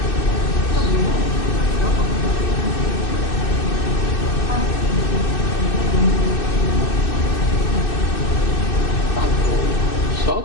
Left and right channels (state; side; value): late; right; 2.6 ms